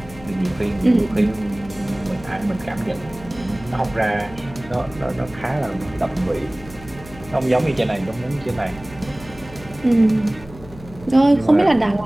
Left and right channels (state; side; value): noise; left; hum, 18 dB below the sound